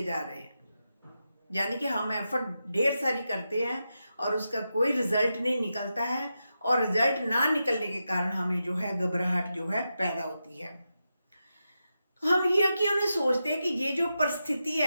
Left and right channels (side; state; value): both; inverted; correlation -0.89